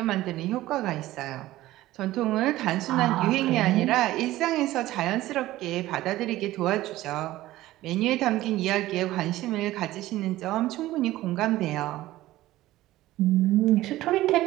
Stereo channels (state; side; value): quieter; left; 16.1 dB